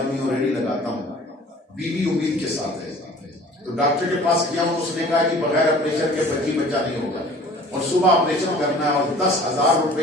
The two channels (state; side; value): normal; both; correlation 0.48